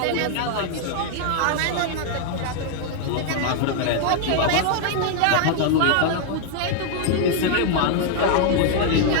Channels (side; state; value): both; different; correlation 0.00